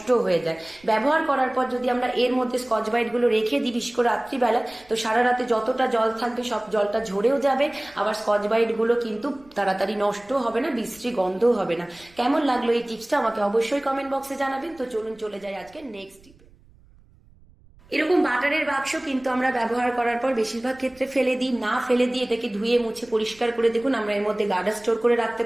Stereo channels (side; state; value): right; noise; rumble, 28 dB below the sound